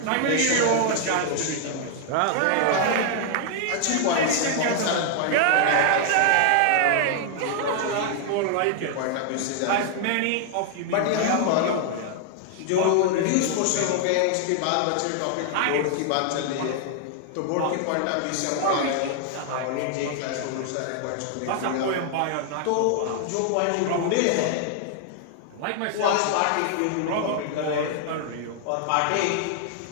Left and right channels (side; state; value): both; different; correlation 0.00